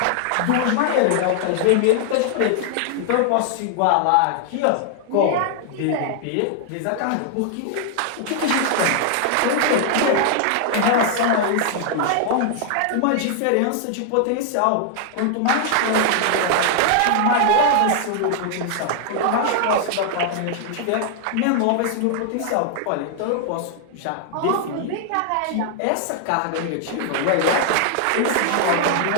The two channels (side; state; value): both; different; correlation 0.00